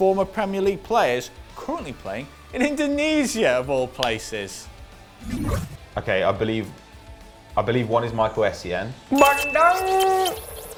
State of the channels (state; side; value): identical; both; correlation 1.00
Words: Premier League players currently playing in Indonesia, of all places? Okay, I believe one is Michael Essien.